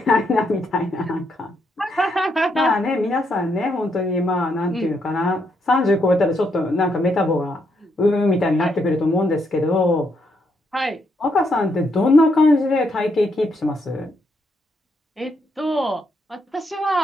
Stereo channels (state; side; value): normal; both; correlation 0.77